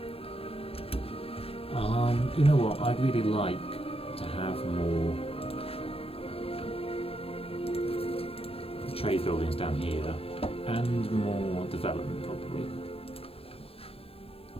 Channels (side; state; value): right; late; 0.28 ms